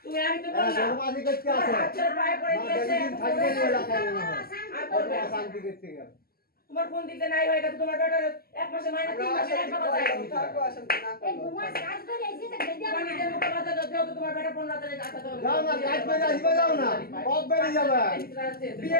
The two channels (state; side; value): late; right; 0.44 ms